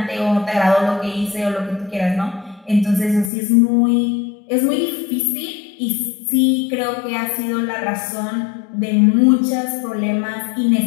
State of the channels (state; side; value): drops out; right; at 3.3 s